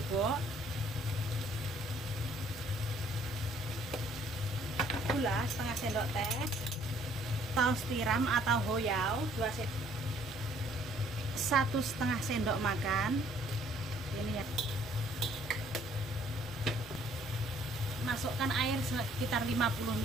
gula setengah sendok teh, saus tiram atau hoyau 1,5 sendok makan. Ini ya, masukkan air sekitar 50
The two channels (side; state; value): both; normal; correlation 0.61